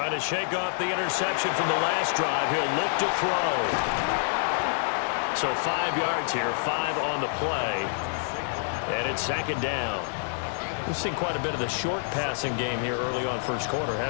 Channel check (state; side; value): silent; right; 60 dB below the other